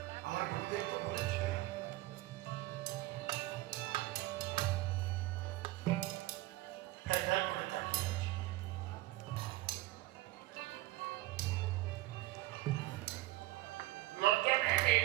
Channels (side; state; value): left; quieter; 17.9 dB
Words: আমার গুরুদেব তো বলেছে করে তাকিয়ে আছে। লজ্জা পেয়ে